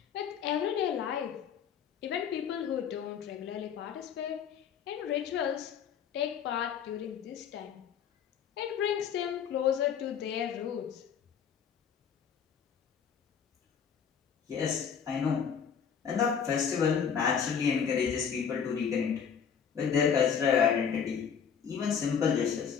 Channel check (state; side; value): quieter; right; 7.4 dB